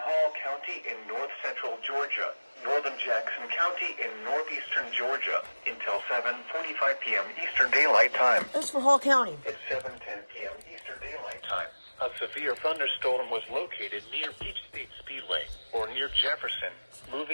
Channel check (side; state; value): both; inverted; correlation -1.00